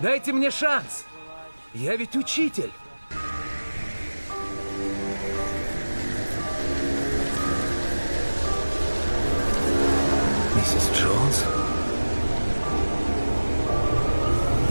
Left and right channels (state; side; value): inverted; both; correlation -1.00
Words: Дайте мне шанс. Я ведь учитель. Миссис Джонс?